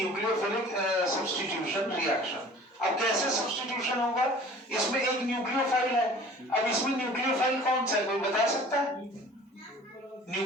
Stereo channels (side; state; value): both; normal; correlation 0.47